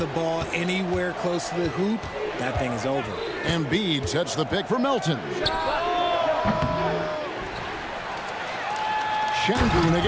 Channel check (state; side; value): identical; both; correlation 1.00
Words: ball anywhere close to the hoop, that thing is over. Embiid sets the pick for Melton. Şengün